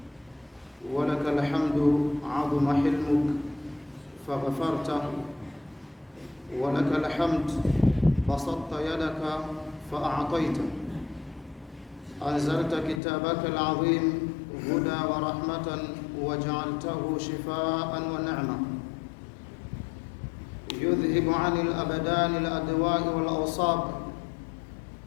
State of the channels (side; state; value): right; drops out; at 13.0 s